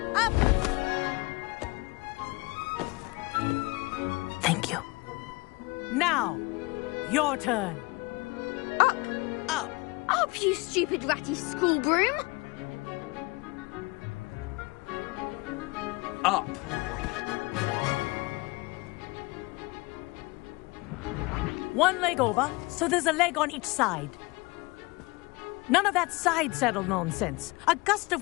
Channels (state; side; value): quieter; right; 24.8 dB